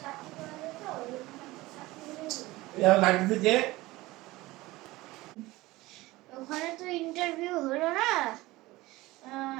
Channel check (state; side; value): quieter; left; 19.5 dB